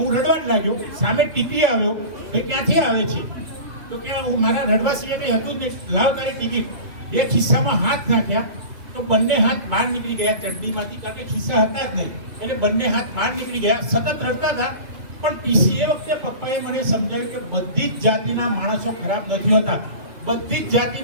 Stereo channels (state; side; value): late; left; 2.6 ms